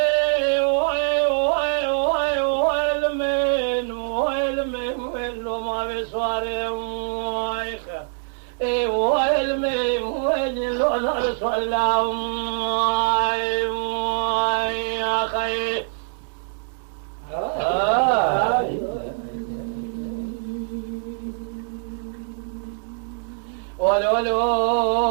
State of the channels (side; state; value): left; silent; digital silence